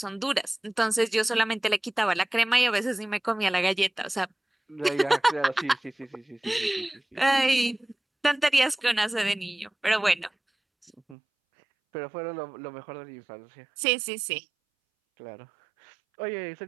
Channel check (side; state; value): left; drops out; at 11.2 s